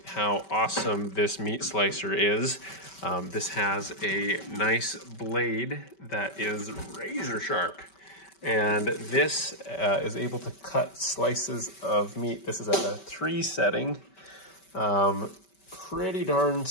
how awesome this meat slicer is. This has a nice blade that is razor sharp. And this is able to cut slices of meat. This is at a 3 setting, pretty darn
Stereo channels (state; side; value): late; right; 5.2 ms